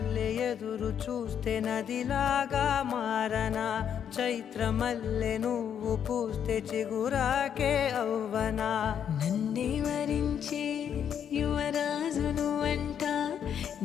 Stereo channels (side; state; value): right; quieter; 8.7 dB